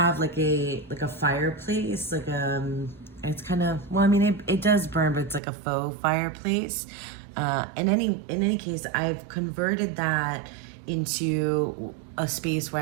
like a fireplace, it's kind of, well, I mean, it does burn, but it's like a faux fireplace. In any case, I've converted that into a space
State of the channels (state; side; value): drops out; left; at 5.4 s